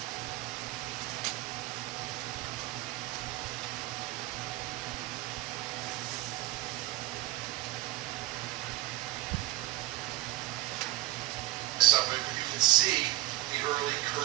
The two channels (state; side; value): quieter; left; 16.6 dB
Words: Of it, you can see the early